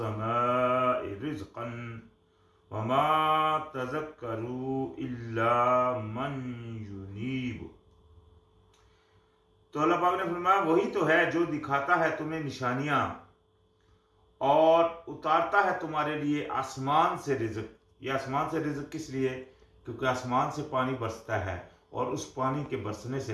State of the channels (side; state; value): both; identical; correlation 1.00